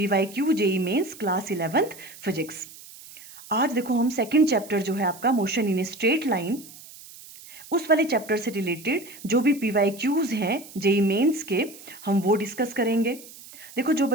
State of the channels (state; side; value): noise; right; hiss, 18 dB below the sound